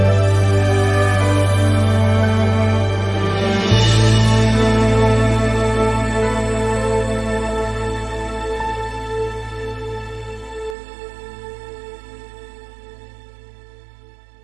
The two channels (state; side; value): drops out; left; at 10.8 s